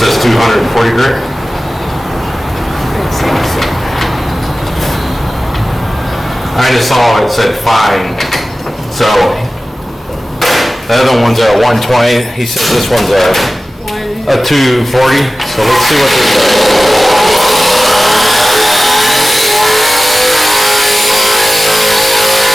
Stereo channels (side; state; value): both; normal; correlation 0.96